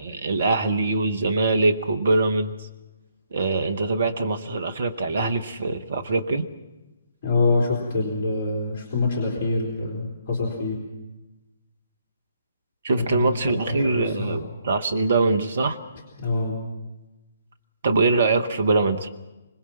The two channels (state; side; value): inverted; both; correlation -0.72